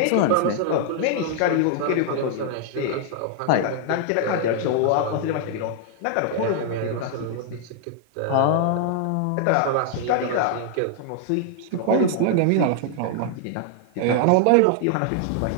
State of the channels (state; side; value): different; both; correlation 0.00